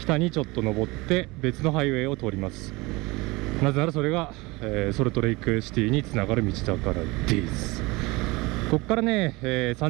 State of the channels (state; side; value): quieter; left; 23.3 dB